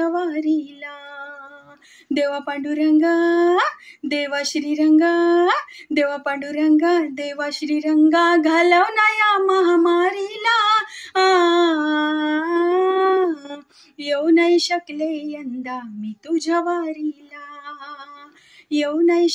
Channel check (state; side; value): identical; both; correlation 1.00